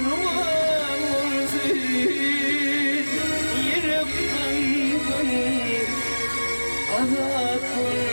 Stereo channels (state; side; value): inverted; both; correlation -1.00